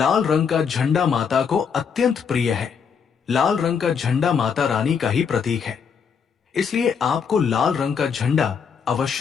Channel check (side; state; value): right; quieter; 6.6 dB